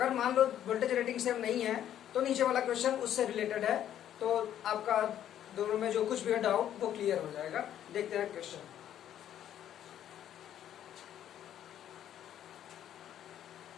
मान लो वोल्टेज रेटिंग सेम नहीं है तो नीचे वाला क्वेश्चन उससे रिलेटेड है, तो आपका दोनों में जो कुछ भी डाउट वो क्लियर हो जाएगा। देखते हैं क्वेश्चन।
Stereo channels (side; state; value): right; quieter; 10.8 dB